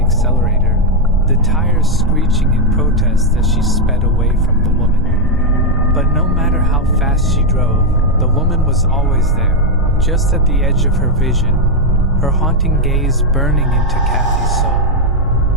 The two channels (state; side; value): normal; both; correlation 0.02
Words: the tires screeching in protest as she sped away from the woman. But no matter how fast she drove, the woman was always there, just at the edge of her vision, her haunting gaze burning into Kathy's